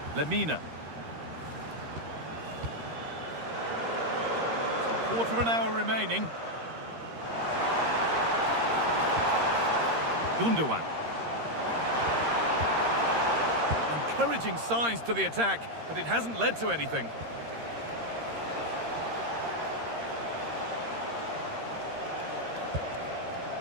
Lemina. So quarter of an hour remaining. Gundogan. Encouraging signs to the attack, but it hasn't led to anything.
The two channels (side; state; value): left; late; 13 ms